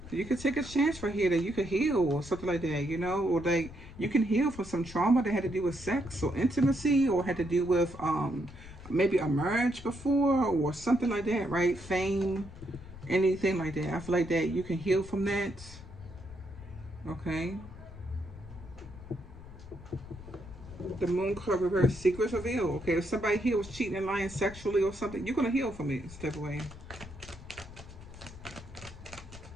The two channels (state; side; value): noise; left; rumble, 16 dB below the sound